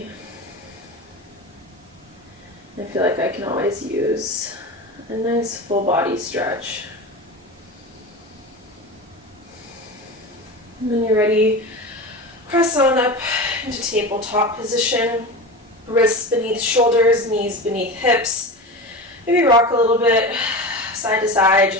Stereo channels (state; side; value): normal; both; correlation 0.27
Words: I feel like I can always use a nice full body stretch. And when you're ready, press on up into tabletop position. Wrists beneath shoulders, knees beneath hips. Maybe rock a little bit side to side.